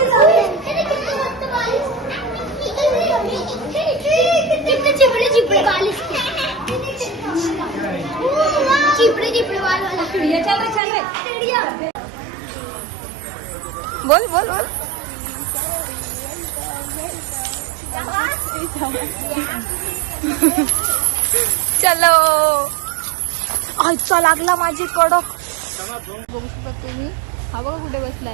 चिपड़े चिपड़े बाल इसके. चिपड़े चिपड़े बाल वाला चिड़िया. चलो चलो चिड़िया. बोल बोल बोल. चलो आजचा लागला माझी कडक. बघू शकता तुम्ही. हा बघा कुठे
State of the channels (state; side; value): drops out; left; at 10.8 s